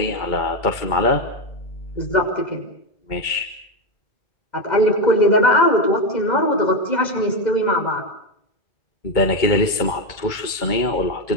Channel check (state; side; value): late; right; 2.2 ms